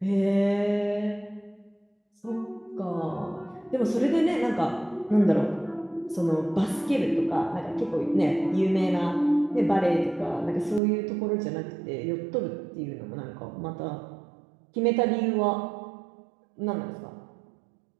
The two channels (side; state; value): left; drops out; at 10.8 s